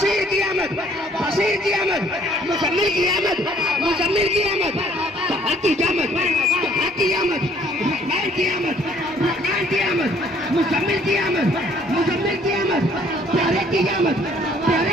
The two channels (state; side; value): normal; both; correlation 0.60